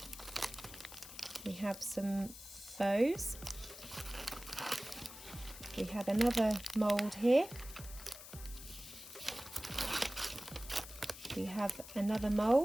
We have some bows. We have another mould here. We have another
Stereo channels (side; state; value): left; noise; hiss, 14 dB below the sound